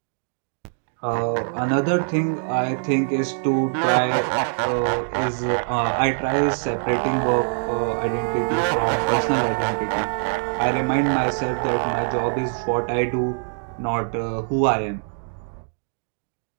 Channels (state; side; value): silent; left; 62 dB below the other